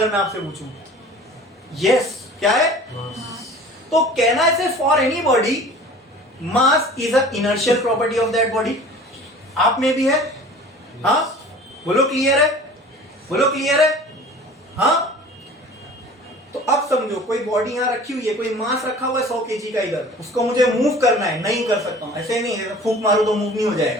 मैं आपसे पूछूं, यस, क्या है? तो कहना है for any body mass is a inertial property of that body. आप में भी है? हाँ, बोलो क्लियर है? बोलो क्लियर है? हाँ। तो अब समझो, कोई बॉडी यहां रखी हुई है, कोई मास रखा हुआ है 100 केजी का इधर, उसको मुझे मूव करना है, नहीं कर सकता हूं। ऐसे नहीं है फूंक मारो तो मूव नहीं हो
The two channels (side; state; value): both; normal; correlation 0.44